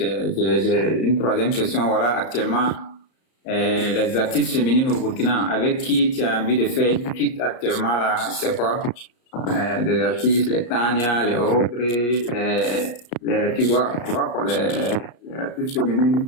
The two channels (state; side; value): late; right; 34 ms